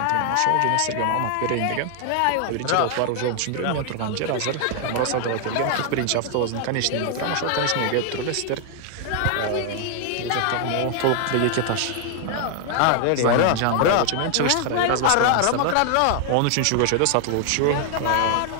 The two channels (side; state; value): both; different; correlation 0.00